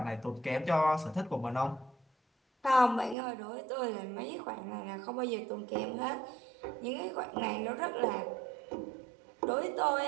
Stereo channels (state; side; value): drops out; left; at 3.2 s